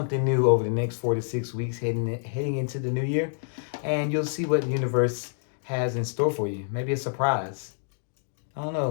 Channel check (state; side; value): silent; right; digital silence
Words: new over the next 4 to 6 weeks heading into the new year, and you'll see what the universe has in store for you. Maybe a surprise. I don't